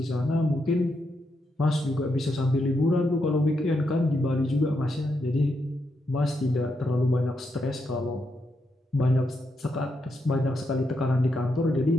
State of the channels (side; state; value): both; normal; correlation 0.82